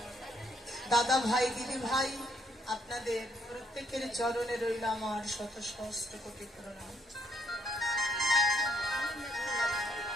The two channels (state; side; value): normal; both; correlation 0.72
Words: দাদা ভাই, দিদি ভাই, আপনাদের প্রত্যেকের চরণে রইল আমার শত সহস্র কোটি প্রণাম।